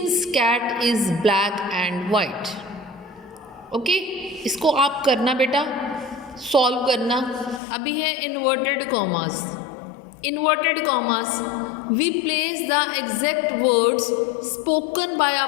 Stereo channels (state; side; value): drops out; right; at 7.6 s